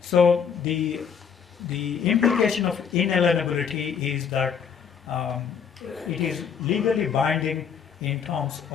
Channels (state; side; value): quieter; right; 7.0 dB